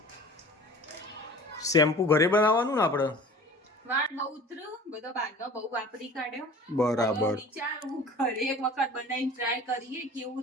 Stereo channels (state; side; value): normal; both; correlation 0.43